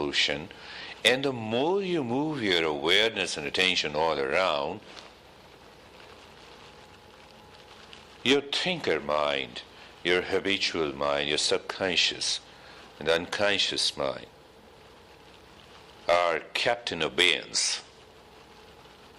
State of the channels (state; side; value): identical; both; correlation 1.00